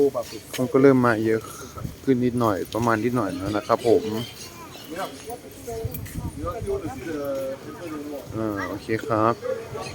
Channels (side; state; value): both; identical; correlation 1.00